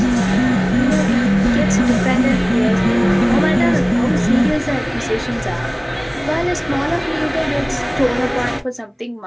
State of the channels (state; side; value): identical; both; correlation 1.00